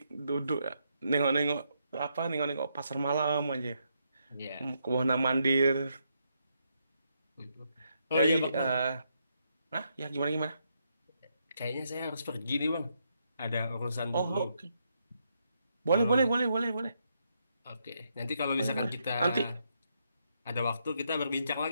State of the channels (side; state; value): both; inverted; correlation -0.78